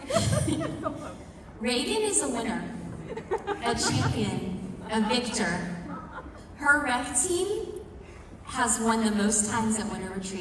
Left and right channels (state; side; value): identical; both; correlation 1.00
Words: Reagan is a winner, a champion, a victor. Her rec team has won the most times at Winter